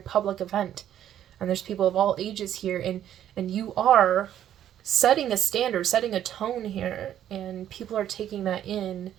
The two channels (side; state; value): left; quieter; 10.9 dB